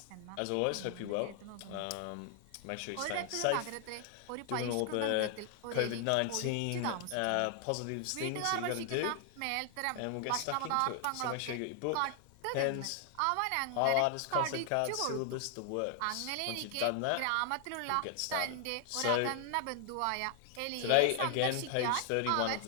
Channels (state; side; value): different; both; correlation 0.00